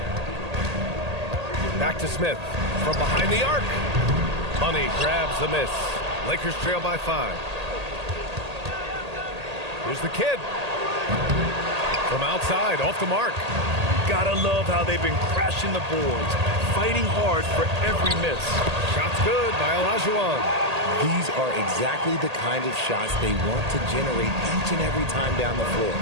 Back to Smith from behind the arc. Money grabs the miss. Lakers trail by 5. Here's the kid. From outside, off the mark. Gotta love how they've been crashing the boards, fighting hard for every miss. Shot's good by Olajuwon. These are exactly the kind of shots they want to generate each and every time down the floor.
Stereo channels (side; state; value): left; late; 1.8 ms